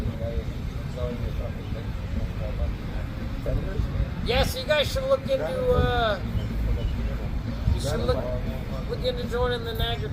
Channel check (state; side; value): identical; both; correlation 1.00